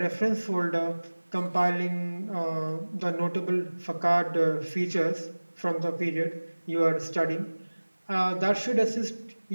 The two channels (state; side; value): inverted; both; correlation -1.00